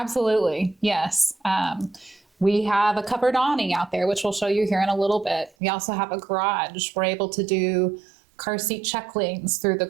yes. We have a covered awning out there, which we'll show you here in a little bit. We also have a garage. We're able to do car seat check lanes through the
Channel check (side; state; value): left; drops out; at 5.5 s